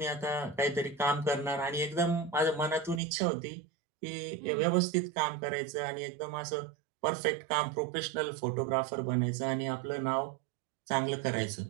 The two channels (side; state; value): left; drops out; at 3.0 s